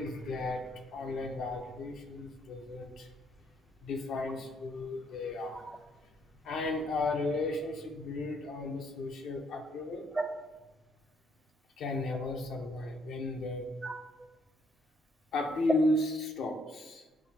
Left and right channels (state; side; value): normal; both; correlation 0.70